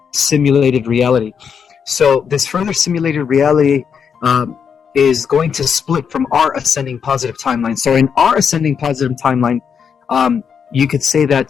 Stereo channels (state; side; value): quieter; right; 6.9 dB